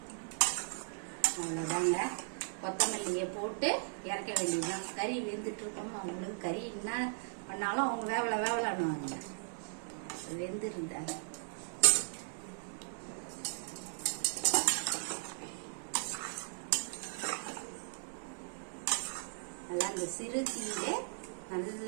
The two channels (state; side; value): silent; left; 53 dB below the other